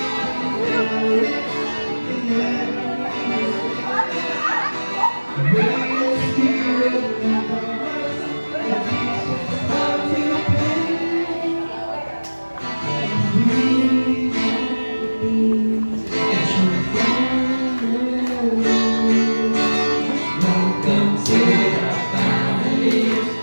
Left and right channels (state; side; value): inverted; both; correlation -1.00